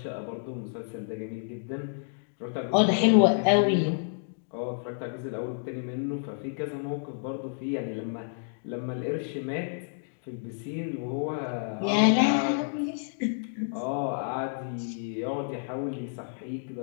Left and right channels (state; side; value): silent; right; digital silence